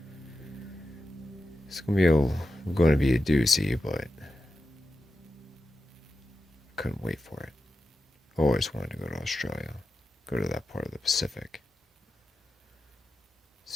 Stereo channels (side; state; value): both; normal; correlation 0.90